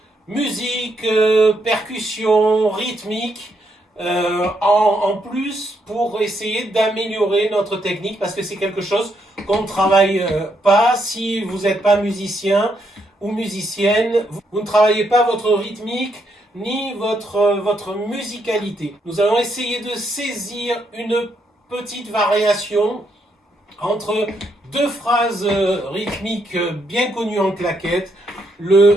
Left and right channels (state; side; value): normal; both; correlation 0.77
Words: musique, percussion, rythmique, en plus pour essayer d'améliorer notre technique parce que c'est quelque chose qu'on ne travaille pas. Si vous n'êtes pas musicien ou musicienne, vous ne travaillez pas votre rythmique ni votre musicalité. Nous allons essayer de saisir une petite variation entre deux phrases rythmiques bien connues en claquette,